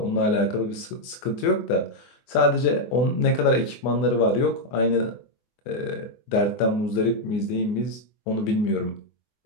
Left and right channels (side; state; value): right; late; 24 ms